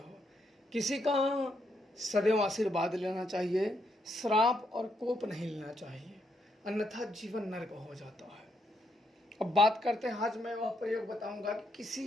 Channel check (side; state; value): both; normal; correlation 0.78